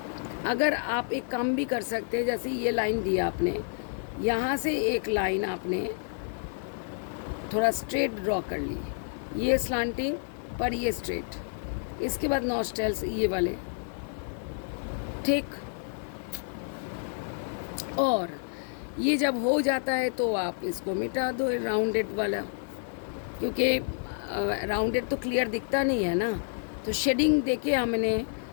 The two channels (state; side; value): silent; right; 55 dB below the other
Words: अगर आप एक काम भी कर सकते हैं, जैसे ये लाइन दिया आपने, यहाँ से एक लाइन आपने थोड़ा स्ट्रेट ड्रॉ कर ली, ये स्लांटिंग पर ये स्ट्रेट, इसके बाद नॉस्ट्रल्स ये वाले, ठीक। और ये जब हो जाता है तो आप इसको मिटा दो, राउंडेड वाला, क्योंकि राउंडेड तो क्लियर दिखता नहीं है ना, तो शेडिंग देके हमने